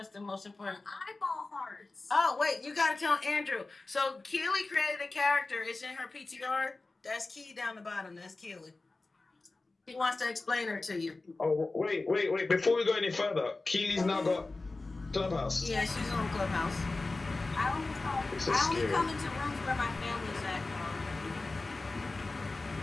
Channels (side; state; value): right; quieter; 3.4 dB